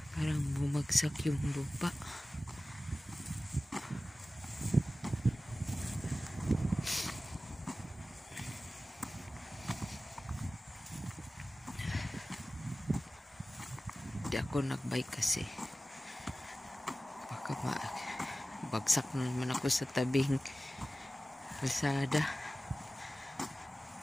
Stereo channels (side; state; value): both; normal; correlation 0.96